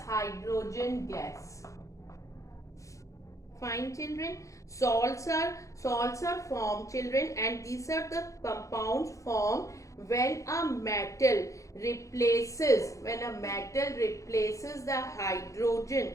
gas. Fine, children. Salts are formed, children, and these are the compounds formed when a metal replaces the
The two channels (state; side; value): late; right; 0.15 ms